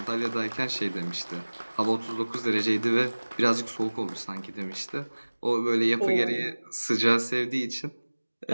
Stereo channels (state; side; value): inverted; both; correlation -1.00